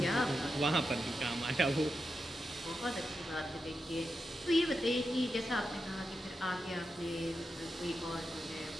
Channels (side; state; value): both; normal; correlation 0.88